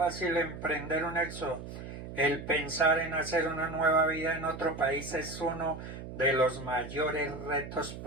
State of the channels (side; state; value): right; noise; hum, 10 dB below the sound